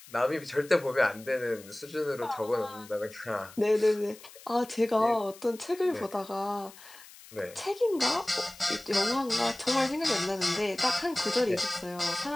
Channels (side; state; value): left; noise; hiss, 20 dB below the sound